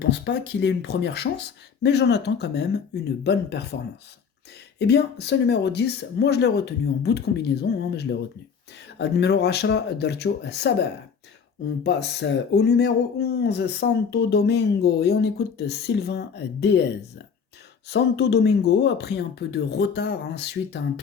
pas qu'il ait une première chance, mais j'en attends quand même une bonne performance. Eh bien, ce numéro 10, moi je l'ai retenu en bout de combinaison, mais je l'ai retenu. Ad numéro 10, Darcho Saba. On passe au numéro 11, Santo Domingo, et on écoute Sylvain Déez. Santo Domingo a pris un peu de retard suite à un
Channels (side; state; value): right; quieter; 6.3 dB